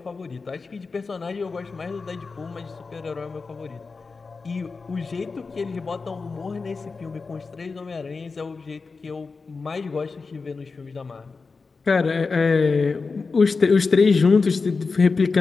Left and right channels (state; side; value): quieter; right; 4.4 dB